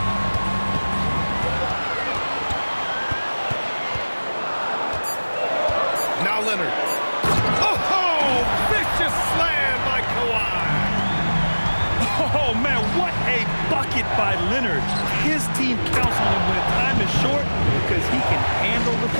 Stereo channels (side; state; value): both; inverted; correlation -1.00